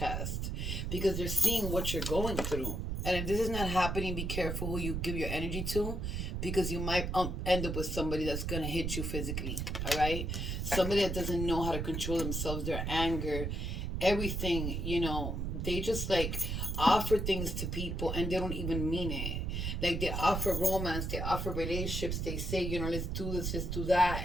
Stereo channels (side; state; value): right; noise; rumble, 2 dB below the sound